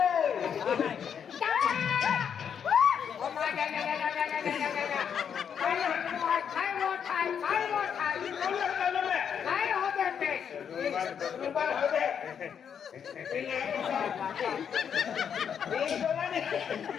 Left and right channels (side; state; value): right; quieter; 7.7 dB